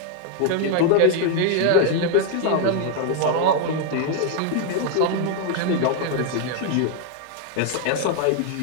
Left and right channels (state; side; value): different; both; correlation 0.00